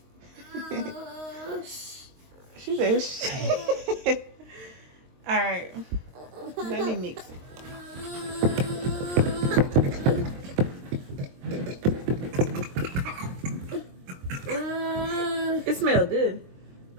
She said, shit. All right. Let me mix it. smell good.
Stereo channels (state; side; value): late; left; 23 ms